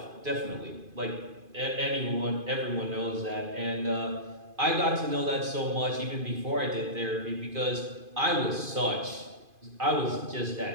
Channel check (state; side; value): late; left; 2.5 ms